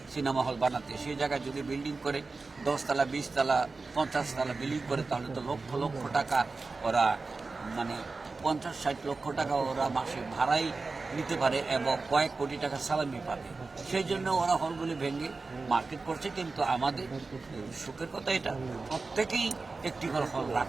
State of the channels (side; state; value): left; quieter; 3.9 dB